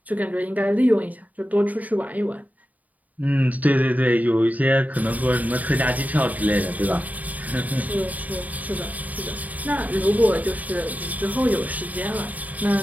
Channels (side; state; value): left; late; 0.075 ms